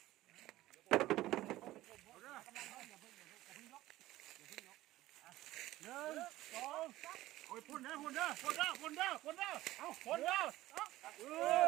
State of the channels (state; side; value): quieter; left; 16.2 dB